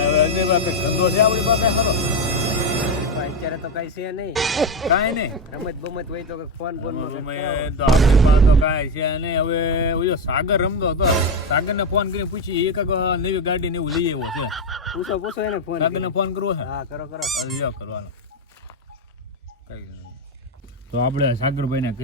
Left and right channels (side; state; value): both; normal; correlation 0.10